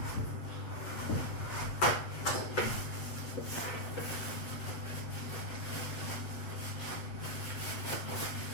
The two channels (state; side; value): late; right; 8.4 ms